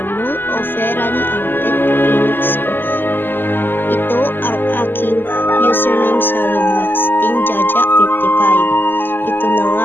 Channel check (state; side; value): late; right; 0.095 ms